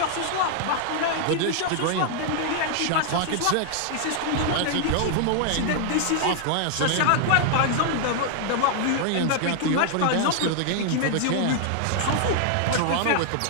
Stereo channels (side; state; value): both; different; correlation 0.00